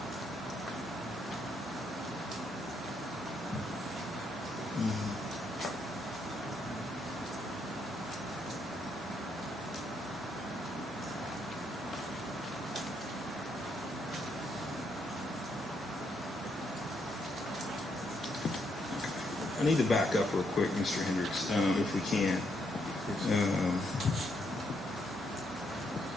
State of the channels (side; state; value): both; normal; correlation 0.76